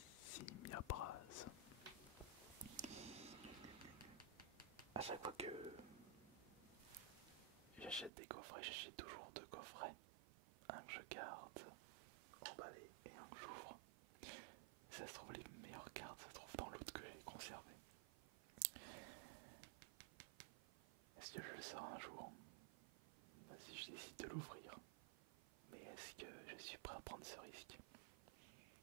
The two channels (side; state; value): left; drops out; at 8.1 s